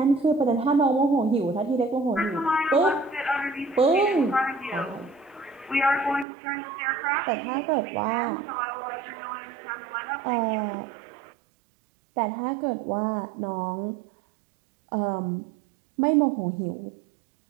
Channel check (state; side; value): drops out; left; at 6.2 s